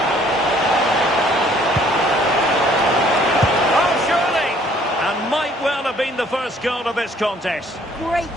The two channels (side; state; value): both; normal; correlation 0.59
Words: Oh, surely! And might well have been the first goal of this contest. Great